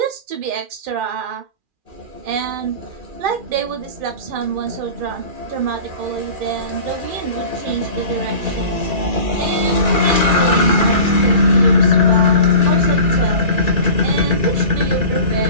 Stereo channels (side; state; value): left; late; 2.4 ms